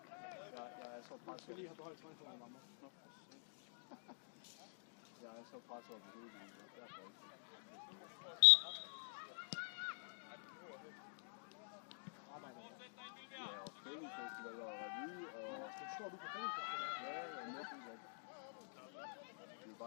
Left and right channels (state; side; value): silent; right; digital silence